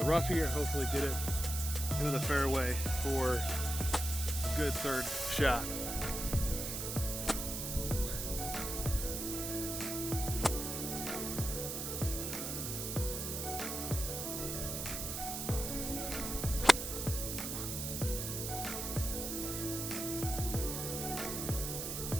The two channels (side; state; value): right; noise; hiss, 4 dB below the sound